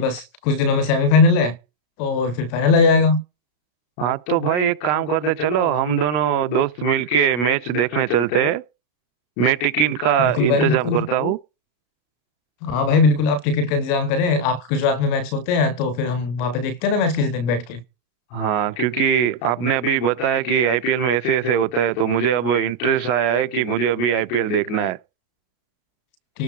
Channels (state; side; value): late; right; 34 ms